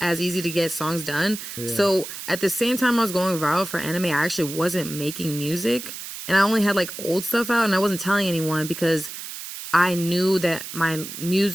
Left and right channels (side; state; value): right; noise; hiss, 10 dB below the sound